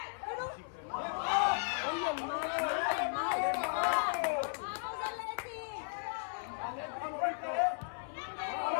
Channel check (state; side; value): silent; right; 54 dB below the other